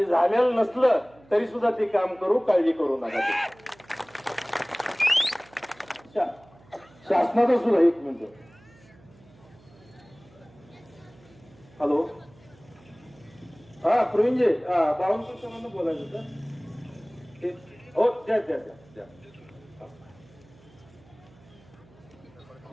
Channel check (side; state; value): right; noise; hum, 26 dB below the sound